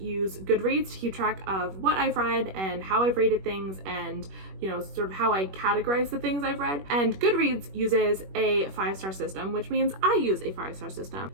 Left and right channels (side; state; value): left; late; 21 ms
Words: Goodreads to keep track of what I've read and how I've rated things and, you know, sort of how I categorize the things I've read. And Goodreads uses a 5-star system, which means I use a 5-star system.